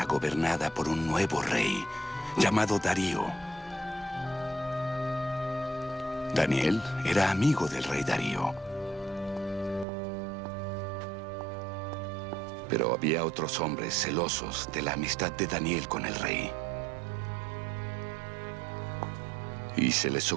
gobernada por un nuevo rey llamado Darío. Daniel era amigo del rey Darío. Pero había otros hombres celosos de la amistad de Daniel con el rey. Y se les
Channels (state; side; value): drops out; left; at 9.9 s